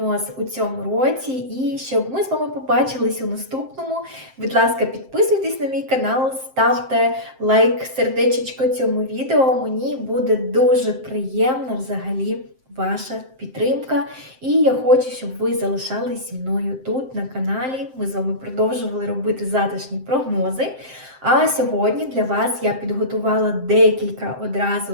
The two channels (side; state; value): left; late; 7.6 ms